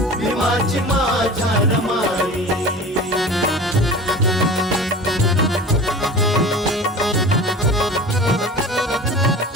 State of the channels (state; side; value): normal; both; correlation 0.37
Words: भीमाची माझ्या रमाई.